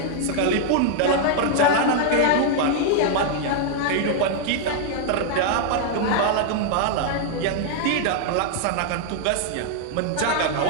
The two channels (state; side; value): different; both; correlation 0.00